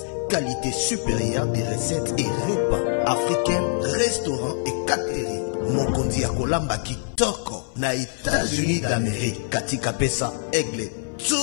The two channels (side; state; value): right; silent; 57 dB below the other